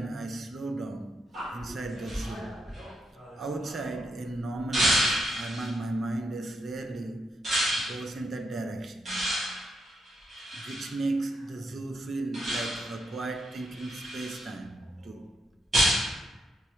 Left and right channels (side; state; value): both; normal; correlation 0.80